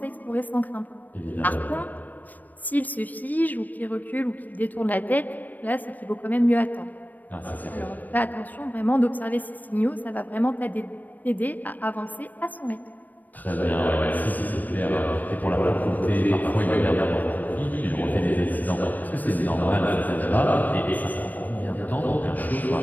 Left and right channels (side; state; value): right; late; 0.085 ms